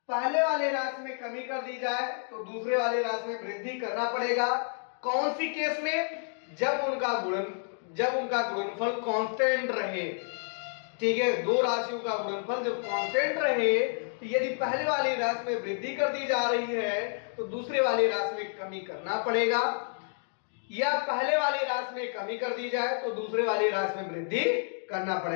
पहले वाले राशि में कमी कर दी जाए तो दूसरे वाले राशि में वृद्धि करना पड़ेगा। कौन सी केस में, जब उनका गुणनफल कांस्टेंट रहे, ठीक है, दो राशियों का गुणनफल जब कांस्टेंट रहे तो यदि पहले वाली राशि में वृद्धि कर दी जा रही है तो दूसरे वाली राशि में कमी करना पड़ेगा, या पहले वाली राशि में कमी कर दी जाए तो दूसरे वाली राशि में वृद्धि करना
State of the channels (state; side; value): silent; right; 58 dB below the other